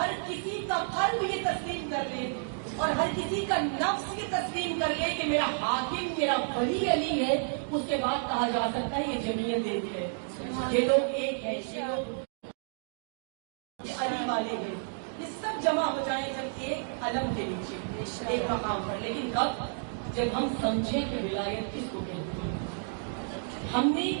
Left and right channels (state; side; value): silent; left; digital silence